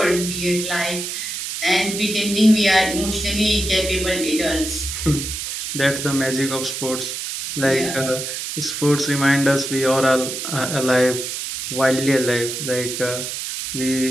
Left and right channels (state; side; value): noise; right; hiss, 5 dB below the sound